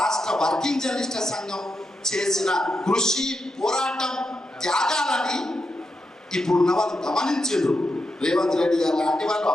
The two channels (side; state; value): both; normal; correlation 0.85